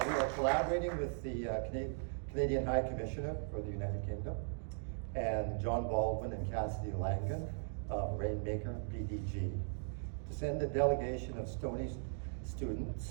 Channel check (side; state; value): left; silent; digital silence